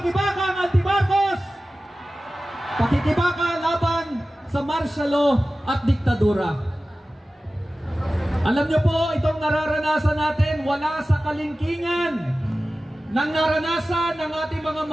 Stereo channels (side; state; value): both; normal; correlation 0.96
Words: anti-Marcos! Pakikibaka laban sa martial law at diktadura. Alam niyo po, itong nararanasan natin wala sa kalingkingan ng naranasan ng ating mga